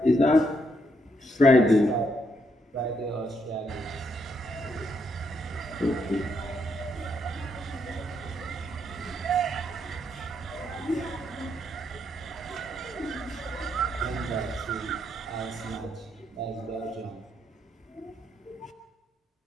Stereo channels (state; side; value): normal; both; correlation 0.76